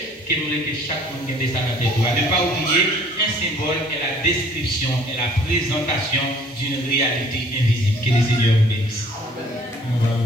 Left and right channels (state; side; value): normal; both; correlation 0.55